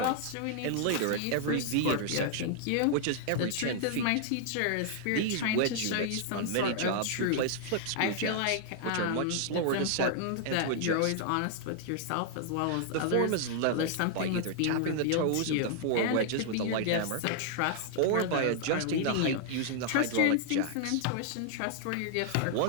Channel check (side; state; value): both; different; correlation -0.01